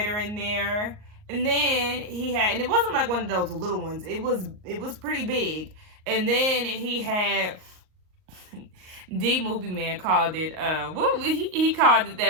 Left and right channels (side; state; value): left; late; 38 ms